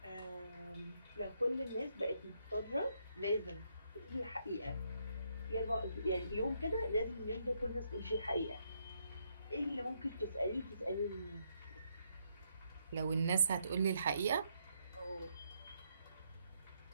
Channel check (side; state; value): both; inverted; correlation -0.76